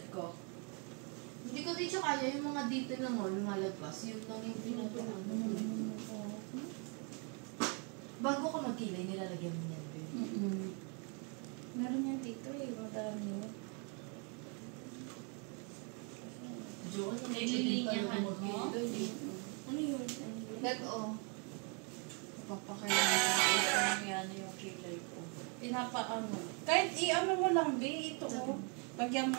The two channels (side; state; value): left; quieter; 36.2 dB